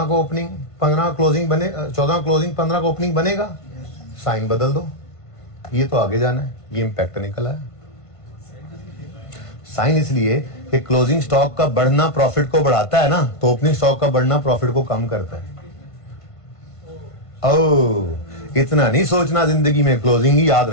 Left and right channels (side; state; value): right; late; 1.5 ms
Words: को ओपनिंग 15 क्लोजिंग बने, 14 क्लोजिंग 15 का ओपनिंग बनेगा, साइन बदल दो। ये तो आगे जाना है, ये इंपैक्ट निकला है। साइन इसलिए कि क्लोजिंग स्टॉक का बढ़ना प्रॉफिट को बढ़ाता है ना, तो ओपनिंग स्टॉक का बढ़ना प्रॉफिट को कम करता है। ओ इतना नहीं सोचना जिंदगी में, क्लोजिंग ही याद